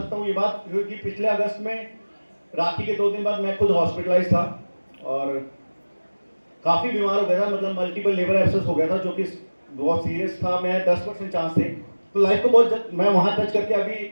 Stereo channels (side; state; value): both; inverted; correlation -1.00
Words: हूँ ये बात, क्योंकि पिछले अगस्त में राखी के 2 दिन बाद मैं खुद हॉस्पिटलाइज था और काफी बीमार हो गया था। मतलब मल्टीपल लिवर एब्सेस हो गया था, जो कि बहुत सीरियस था। मैं 10% चांस थे। तो लाइफ को बहुत मैं वहां टच करके